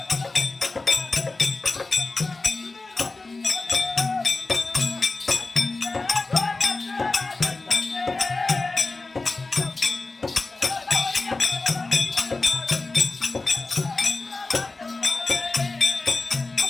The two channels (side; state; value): right; quieter; 3.5 dB